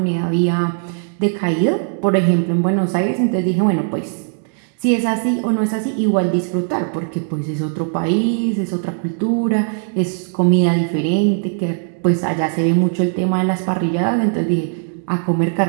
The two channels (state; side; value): silent; left; digital silence